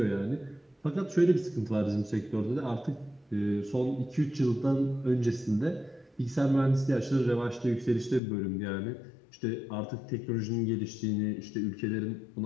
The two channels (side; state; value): right; drops out; at 8.2 s